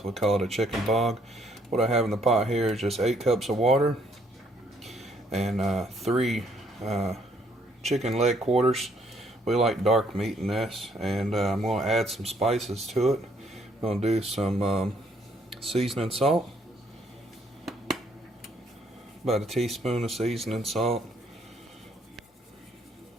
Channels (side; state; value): both; normal; correlation 0.68